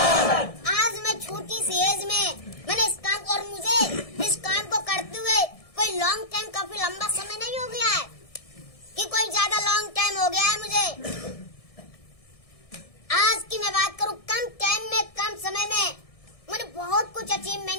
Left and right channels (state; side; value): late; right; 1.6 ms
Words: आज मैं छोटी सी एज में मैंने इस काम को, और मुझे इस काम को करते हुए कोई लॉन्ग टाइम, काफी लंबा समय नहीं हो गया है कि कोई ज्यादा लॉन्ग टाइम हो गया है मुझे। आज की मैं बात करूं, कम टाइम में, कम समय में मैंने बहुत कुछ